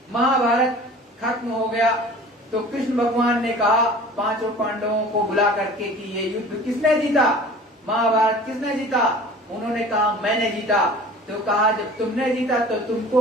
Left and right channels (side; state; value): both; normal; correlation 0.43